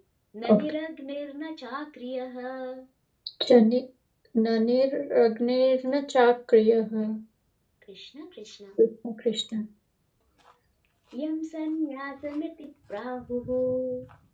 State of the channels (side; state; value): both; identical; correlation 1.00